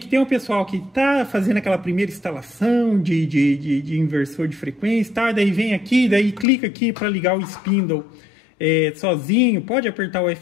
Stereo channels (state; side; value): drops out; right; at 6.5 s